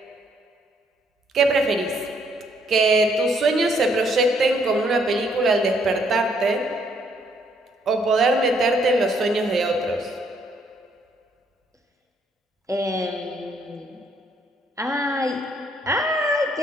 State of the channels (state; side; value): normal; both; correlation 0.69